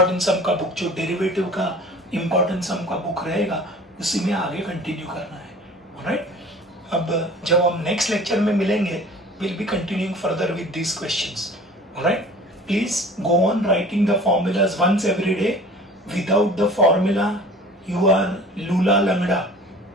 सम का बुक, जो डेरिवेटिव का इंपॉर्टेंट सम का बुक रहेगा उसी में आगे कंटिन्यू करना है, राइट. अब जब हम नेक्स्ट लेक्चर में मिलेंगे will be continuing further with these questions, right. Please go on writing the formulas once every day. Without the formula, you are lula langda.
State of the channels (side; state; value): both; normal; correlation 0.44